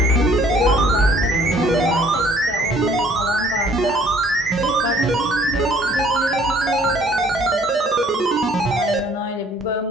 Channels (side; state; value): both; normal; correlation 0.58